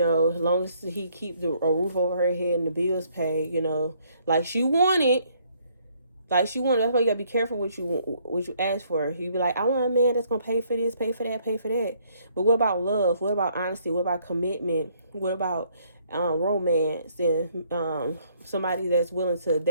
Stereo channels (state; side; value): inverted; both; correlation -0.66